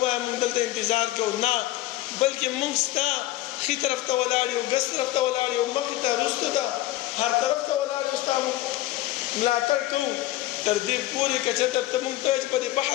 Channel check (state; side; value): quieter; right; 16.2 dB